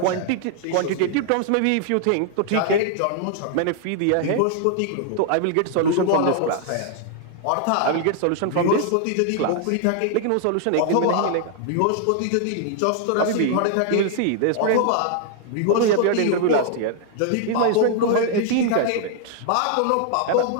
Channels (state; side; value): different; both; correlation 0.00